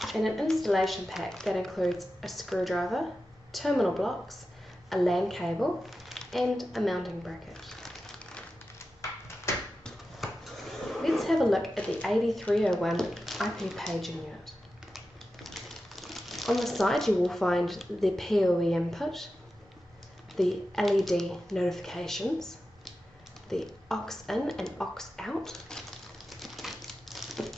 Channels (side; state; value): both; normal; correlation 0.92